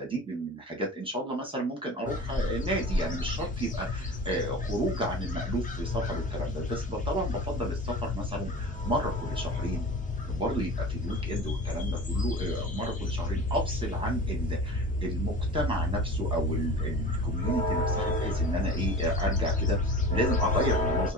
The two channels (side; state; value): both; normal; correlation 0.36